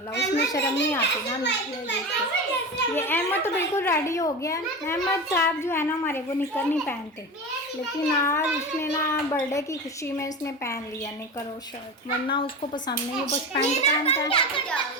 उसमें शर्म नहीं आती ना। ये अहमद तो बिल्कुल रेडी हो गया है। अहमद साहब जो है ना हमारे, वो निकर नहीं पहनते, लेकिन आज उसने ना बर्थडे की खुशी में उसने पहन लिया निकर और शर्ट, वरना उसको पसंद नहीं है, बस पैंट पहनता है।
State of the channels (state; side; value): normal; both; correlation 0.26